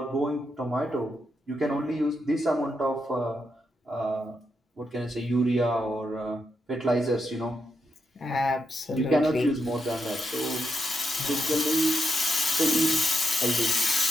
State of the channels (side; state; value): both; normal; correlation 0.82